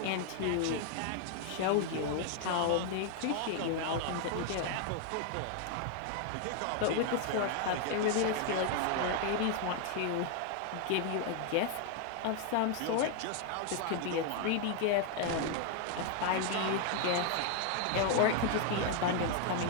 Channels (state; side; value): different; both; correlation 0.00